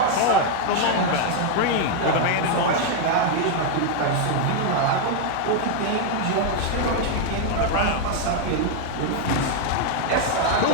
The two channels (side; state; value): both; different; correlation 0.00